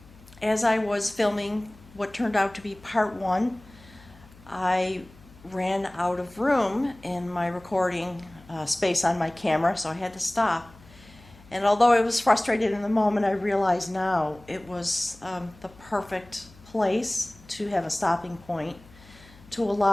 as I was filming what turned out to be part 1, I ran out of room in my recording space on my camera, so I had to stop. And although I was frustrated in the moment, I realize now it was the perfect place to have a stopping point to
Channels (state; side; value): noise; left; hum, 24 dB below the sound